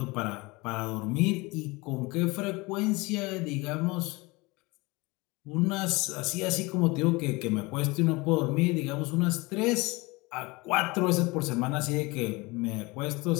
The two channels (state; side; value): quieter; right; 24.1 dB